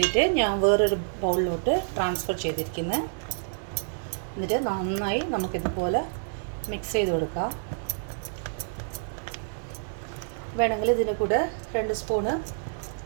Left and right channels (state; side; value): silent; left; digital silence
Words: ഞാൻ വേറൊരു ബൗളിലോട്ട് ട്രാൻസ്ഫർ ചെയ്തിരിക്കുന്നത്. എന്നിട്ട് നന്നായി നമുക്കിതുപോലെ മിക്സ് ചെയ്ത് കൊടുക്കാം. വേണമെങ്കിൽ ഇതിൻ്റെ കൂടെ 2 സ്പൂണ്